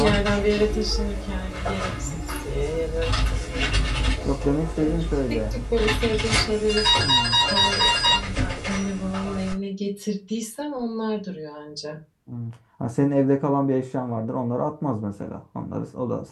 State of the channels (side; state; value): both; identical; correlation 1.00